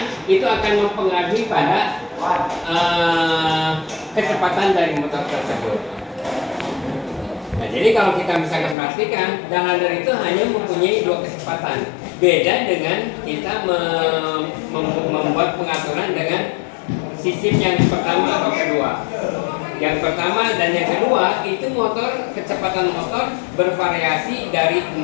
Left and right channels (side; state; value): right; drops out; at 8.8 s